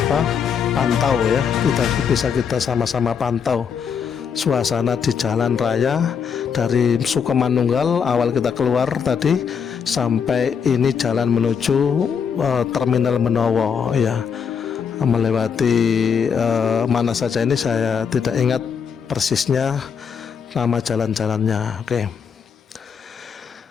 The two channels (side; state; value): right; quieter; 6.8 dB